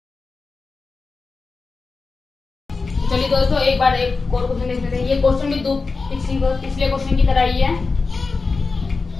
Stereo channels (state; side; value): quieter; right; 4.2 dB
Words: चलिए दोस्तों एक बार एक और क्वेश्चन देख लेते हैं। ये क्वेश्चन भी दो पिछले क्वेश्चन की तरह ही है।